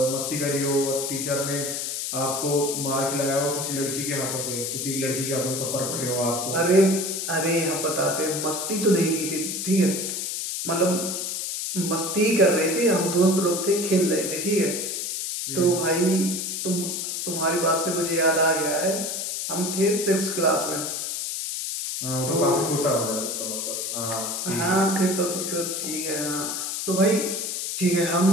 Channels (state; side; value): noise; left; hiss, 3 dB below the sound